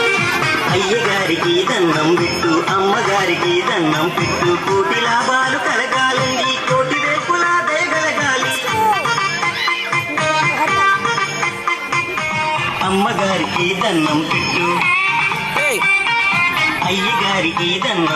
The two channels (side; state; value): both; identical; correlation 1.00